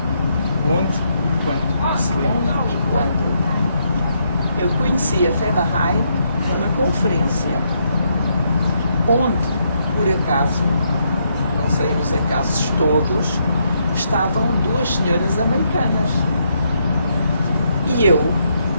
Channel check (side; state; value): both; inverted; correlation -0.76